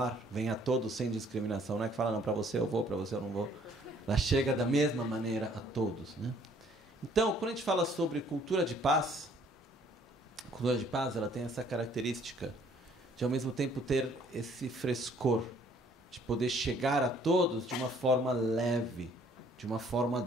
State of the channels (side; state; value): both; normal; correlation 0.60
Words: vem a todos sem discriminação. Não é que fala, não, para você eu vou, para você eu não vou. Ela chega da mesma maneira a todos, né? Então, quando a gente fala sobre cultura de paz, a cultura de paz ela tem essa característica de, ao mesmo tempo, ter esse frescor, de poder chegar a todos de uma forma leve, de uma forma